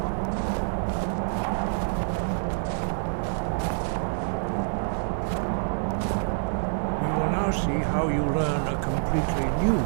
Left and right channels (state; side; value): silent; left; digital silence